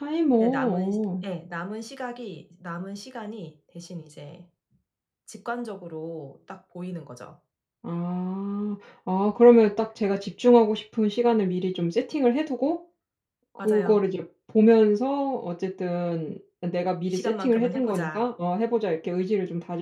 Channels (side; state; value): both; identical; correlation 1.00